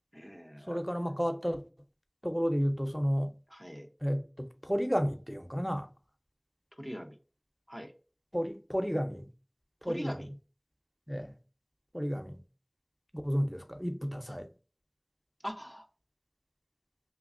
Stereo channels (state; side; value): identical; both; correlation 1.00